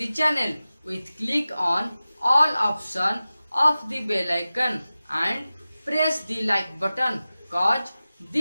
channel with click on all option of the bell icon and press the like button cause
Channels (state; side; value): inverted; both; correlation -0.96